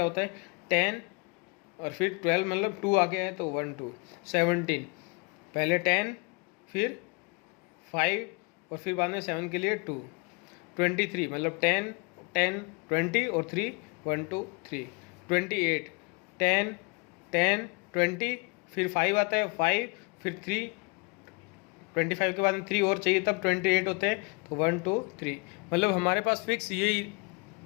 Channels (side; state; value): right; quieter; 30.7 dB